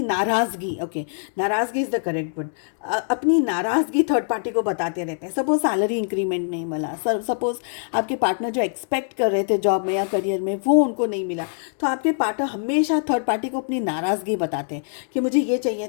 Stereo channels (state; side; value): silent; right; digital silence